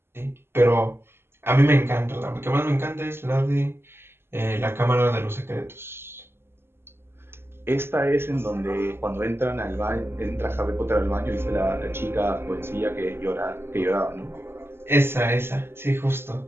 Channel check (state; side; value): late; left; 0.11 ms